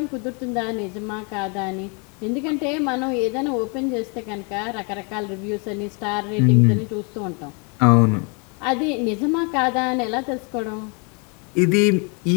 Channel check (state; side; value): quieter; right; 34.6 dB